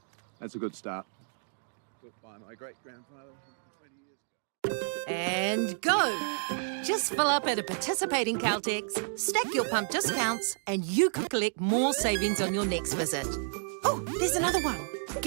That's a good start. Built by my great-grandfather 20 years ago. And go! Just fill up at a participating Caltex, stack your pump discounts, and you could collect more savings on your next visit. Oh, there's another one.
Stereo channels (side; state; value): left; silent; digital silence